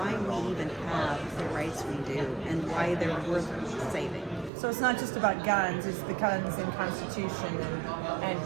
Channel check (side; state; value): left; drops out; at 4.5 s